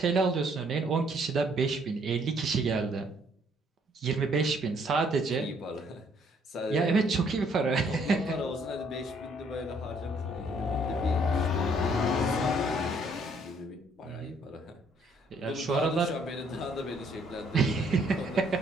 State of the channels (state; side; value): normal; both; correlation 0.65